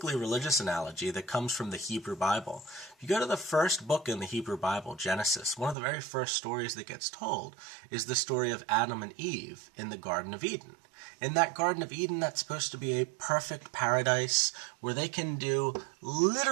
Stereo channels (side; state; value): left; drops out; at 5.8 s